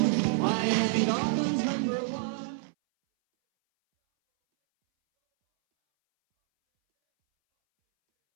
Miami Dolphins #1.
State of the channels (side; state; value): left; silent; 60 dB below the other